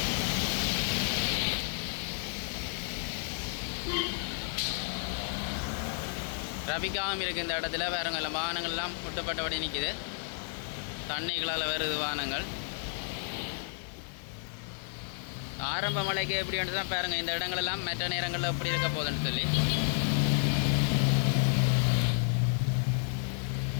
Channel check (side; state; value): right; silent; 57 dB below the other